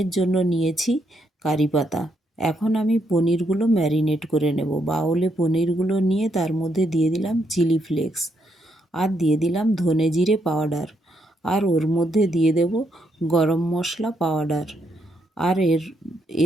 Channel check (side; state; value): both; normal; correlation 0.77